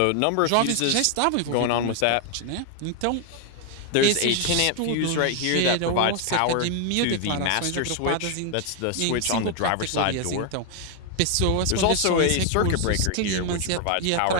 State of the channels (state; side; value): different; both; correlation 0.00